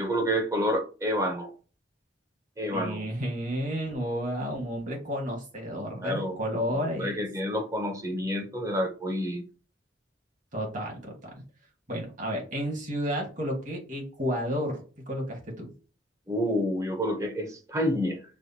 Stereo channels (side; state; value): both; normal; correlation 0.50